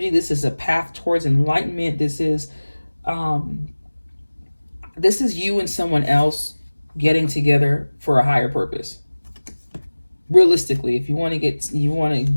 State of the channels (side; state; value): both; inverted; correlation -1.00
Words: This is a path towards enlightenment. This is you and someone else getting together for a higher purpose. Realistically, if you want to